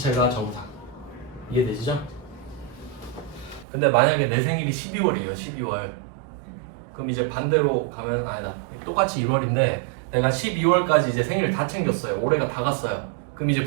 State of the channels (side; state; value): left; drops out; at 3.7 s